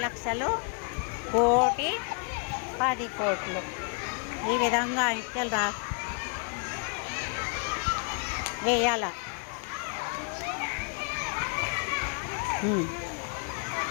లక్షలు, కోటి, 10 కోట్లు. ఈ విధంగా అంకెలు వేయాల.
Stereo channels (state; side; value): quieter; right; 38.7 dB